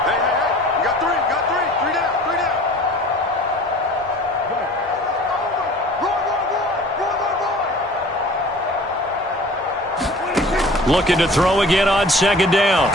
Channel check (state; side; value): normal; both; correlation 0.46